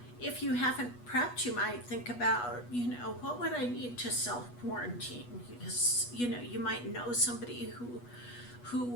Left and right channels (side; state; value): right; late; 8.2 ms